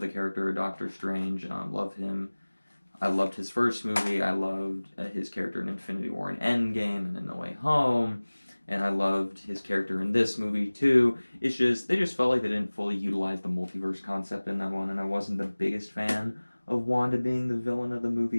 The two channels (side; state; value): both; inverted; correlation -1.00